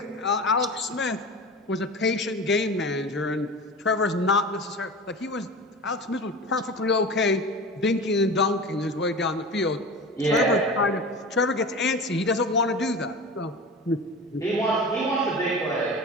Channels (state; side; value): normal; both; correlation 0.32